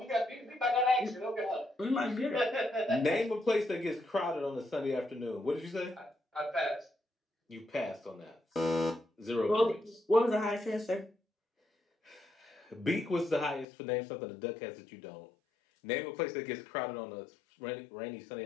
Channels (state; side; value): drops out; right; at 13.7 s